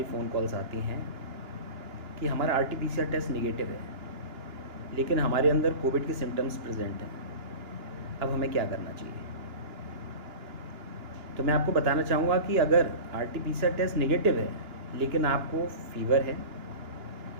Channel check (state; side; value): late; left; 2.9 ms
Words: फ़ोन कॉल्स आती हैं कि हमारा RT-PCR टेस्ट निगेटिव है, लेकिन हमारे अंदर कोविड के सिम्टम्स प्रेजेंट हैं। अब हमें क्या करना चाहिए? तो मैं आपको बताना चाहूँगा कि अगर RT-PCR टेस्ट निगेटिव है लेकिन आपको फीवर है,